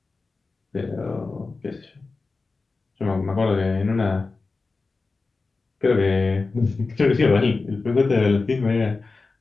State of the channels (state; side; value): quieter; right; 3.9 dB